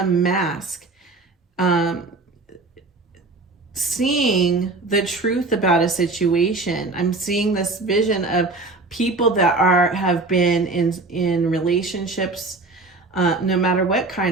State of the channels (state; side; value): quieter; left; 3.4 dB